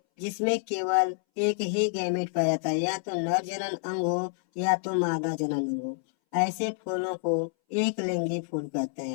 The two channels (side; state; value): right; silent; 59 dB below the other